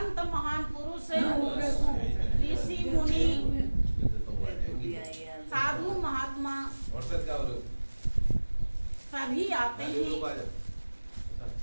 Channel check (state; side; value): inverted; both; correlation -1.00